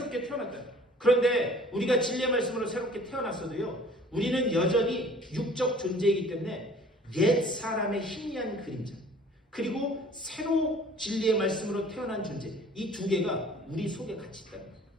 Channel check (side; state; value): both; normal; correlation 0.51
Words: 태어났다. 그런데 우리가 진리의 말씀으로 새롭게 태어났어도요, 우리는 여전히 육적 존재이기 때문에 옛 사람의 희미한 그림자, 그리고 새로 진리의 말씀으로 태어난 존재, 이 두 개가 우리 속에 같이 있다.